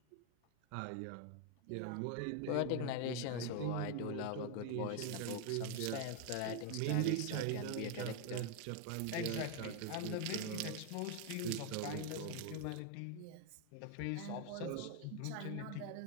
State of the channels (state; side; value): different; both; correlation 0.01